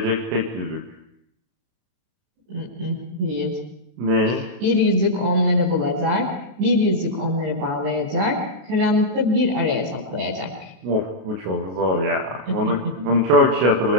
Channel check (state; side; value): late; left; 33 ms